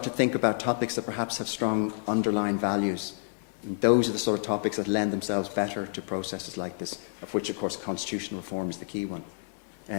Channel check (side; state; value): right; silent; 57 dB below the other